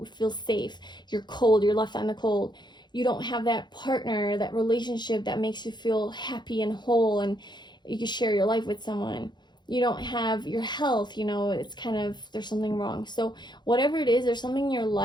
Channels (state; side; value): late; right; 0.21 ms